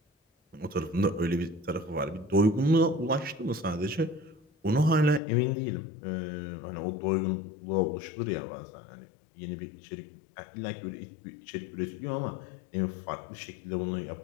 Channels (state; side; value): drops out; right; at 5.2 s